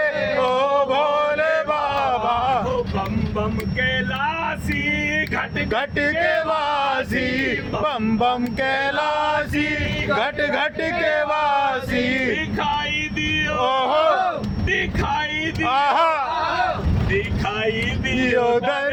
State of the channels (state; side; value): identical; both; correlation 1.00